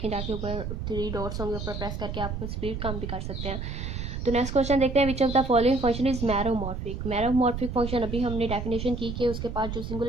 जाके ऊपर 3 डॉट्स होंगे, ऊपर प्रेस करके आप स्पीड कम भी कर सकते हैं। तो नेक्स्ट क्वेश्चन देखते हैं, which of the following function is meromorphic. Meromorphic function अभी हमने डेफिनेशन की कि उसके पास जो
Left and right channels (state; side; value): noise; right; rumble, 5 dB below the sound